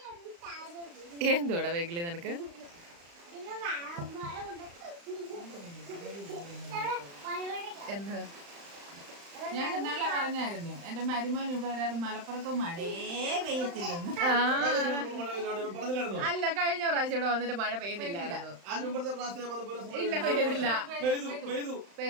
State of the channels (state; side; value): late; left; 35 ms